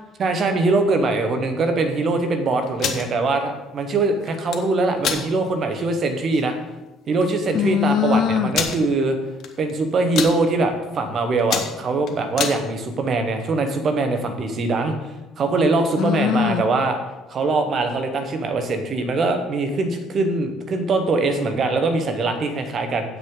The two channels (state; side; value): normal; both; correlation 0.63